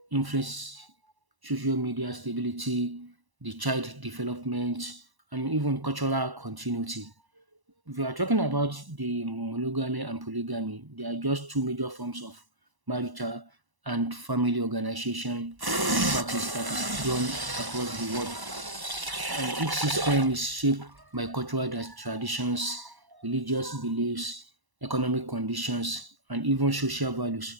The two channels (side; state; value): left; late; 1.0 ms